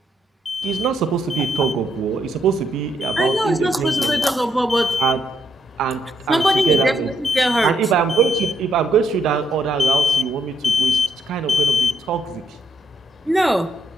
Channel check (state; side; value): normal; both; correlation 0.75